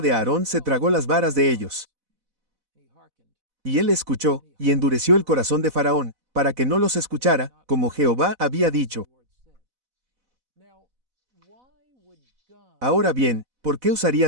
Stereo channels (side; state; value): left; late; 4.0 ms